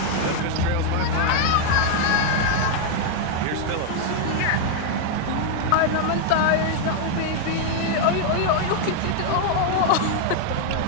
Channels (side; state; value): both; different; correlation 0.00